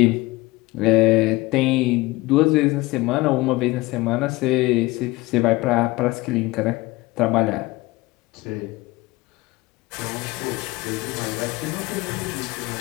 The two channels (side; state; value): right; quieter; 20.8 dB